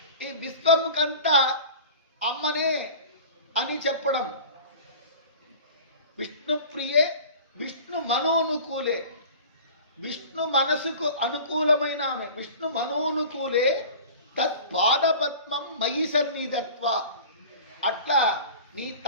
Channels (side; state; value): both; inverted; correlation -0.40